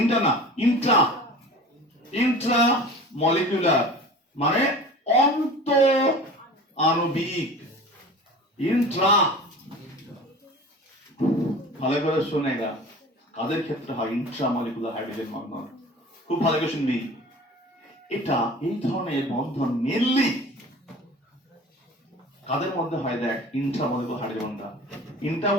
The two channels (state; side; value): normal; both; correlation 0.39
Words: inter না, ইন্ট্রা। ইন্ট্রা মলিকুলার মানে অন্ত আণবিক। ইন্ট্রা, ভালো করে শোনেগা, কাদের ক্ষেত্রে হয় ইন্ট্রা মলিকুলার হাইড্রোজেন বন্ধন? খুব ভালো করে শুনবি। এটা এই ধরনের বন্ধন মেনলি কাদের মধ্যে হয়? দেখ, ইন্ট্রা মলিকুলার হাইড্রোজেন বন্ডটা, ইন্ট্রা